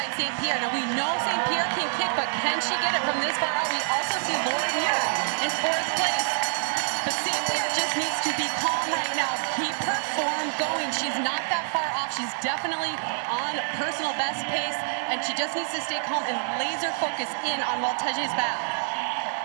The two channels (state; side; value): silent; left; 60 dB below the other